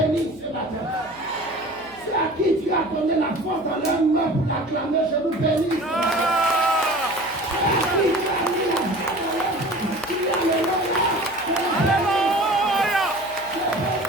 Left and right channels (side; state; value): left; noise; hum, 24 dB below the sound